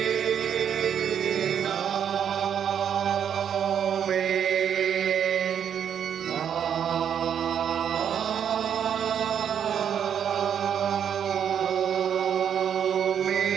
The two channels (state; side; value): quieter; left; 8.5 dB